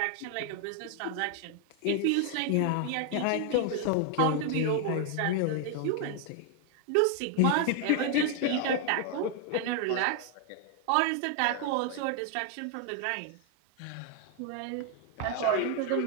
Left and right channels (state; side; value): different; both; correlation 0.00